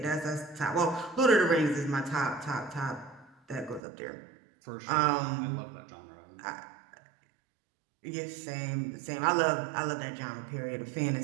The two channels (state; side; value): drops out; left; at 3.8 s